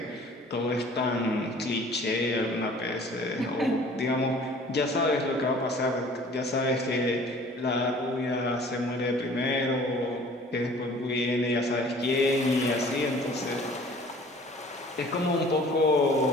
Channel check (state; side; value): normal; both; correlation 0.50